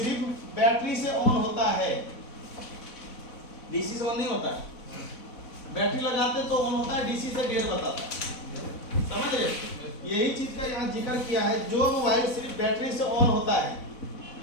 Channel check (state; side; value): late; right; 4.1 ms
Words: बैटरी से ऑन होता है, डीसी से ऑन नहीं होता है, बैटरी लगाते तो ऑन होता है, डीसी से डेढ़ बताता है, समझ रहे। यही चीज का यहाँ जिक्र किया है, जो मोबाइल सिर्फ बैटरी से ऑन होता है,